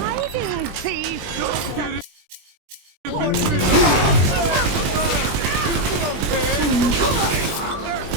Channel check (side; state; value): left; late; 20 ms